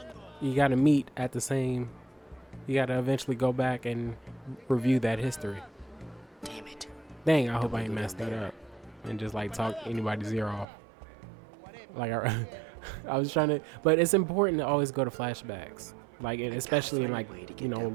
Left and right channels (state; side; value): drops out; left; at 10.7 s